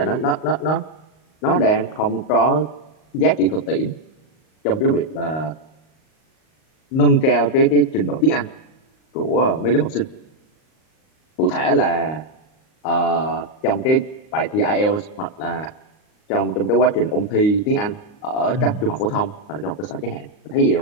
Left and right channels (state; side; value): late; right; 38 ms